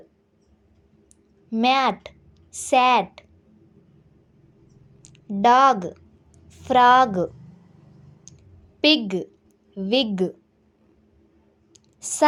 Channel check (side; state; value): both; identical; correlation 1.00